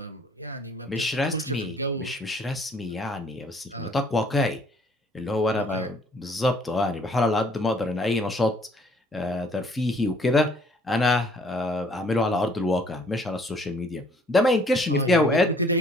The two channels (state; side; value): normal; both; correlation 0.60